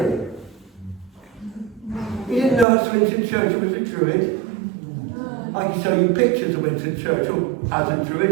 You didn't know that Sir Winston Churchill was a Druid? I can show you pictures of Winston Churchill as a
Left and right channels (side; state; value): left; drops out; at 2.7 s